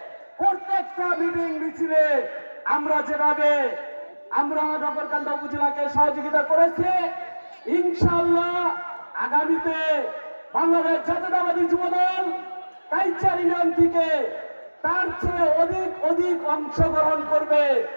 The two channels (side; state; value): both; inverted; correlation -1.00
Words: প্রত্যেকটা মিটিং মিছিলে আমরা যেভাবে নগরকান্দা উপজেলাকে সহযোগিতা করেছি, ইনশাআল্লাহ আগামীতে বাংলাদেশ জাতীয়তাবাদী যুবদল কাইচার ইউনিয়ন থেকে তার চেয়ে অধিক অংশগ্রহণ করবে